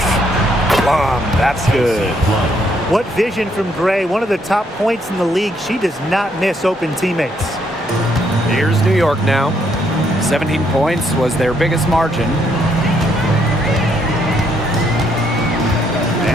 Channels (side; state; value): both; normal; correlation 0.72